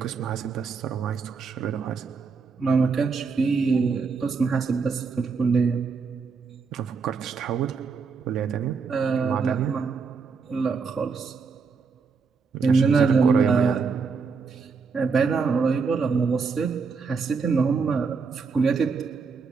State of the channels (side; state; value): left; quieter; 5.1 dB